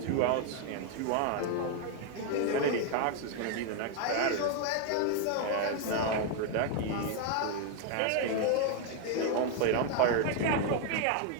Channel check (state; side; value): different; both; correlation 0.01